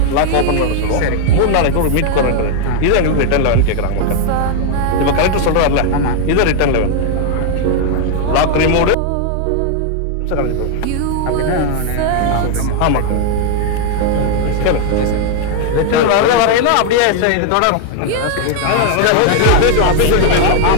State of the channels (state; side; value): different; both; correlation 0.00